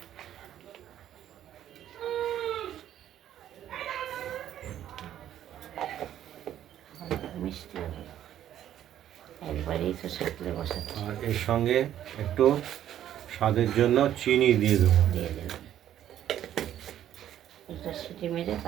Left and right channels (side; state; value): left; quieter; 11.3 dB